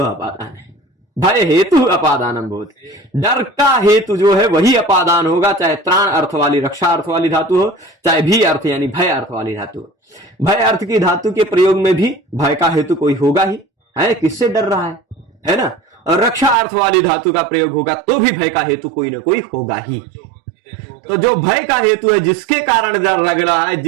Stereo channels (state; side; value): drops out; left; at 16.6 s